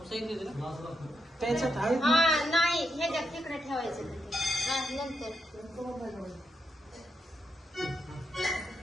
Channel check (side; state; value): both; normal; correlation 0.83